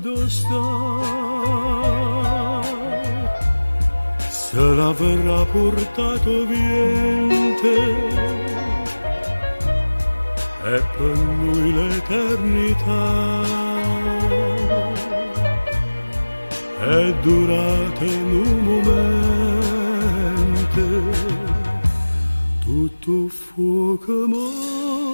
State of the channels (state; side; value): inverted; both; correlation -1.00